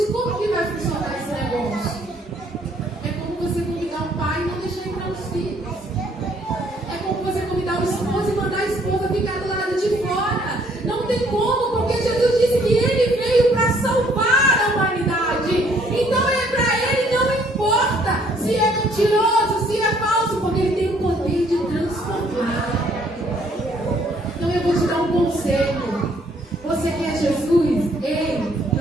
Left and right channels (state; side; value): normal; both; correlation 0.64